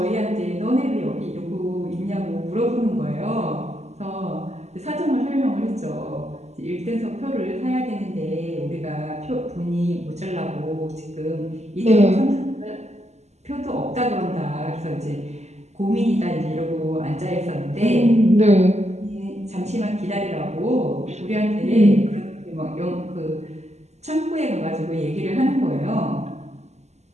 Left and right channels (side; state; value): left; late; 0.33 ms